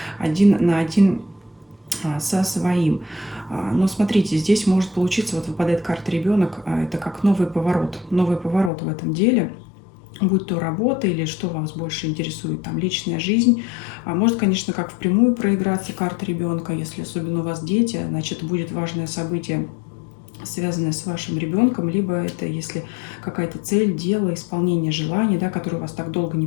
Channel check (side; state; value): right; drops out; at 8.7 s